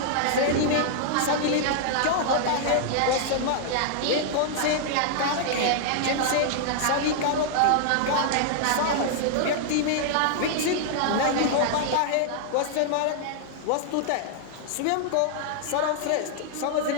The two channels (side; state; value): both; different; correlation -0.01